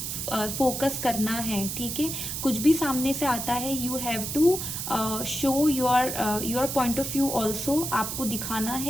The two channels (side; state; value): right; noise; hiss, 4 dB below the sound